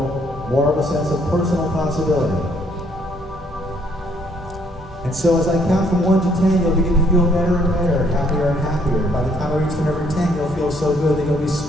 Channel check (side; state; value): both; normal; correlation 0.66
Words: more of a sense of personal possibility. And so as I count from 1 to 10, you'll begin to feel better and better, happier and happier. By the time I reach the number 10, you'll feel so good that you'll be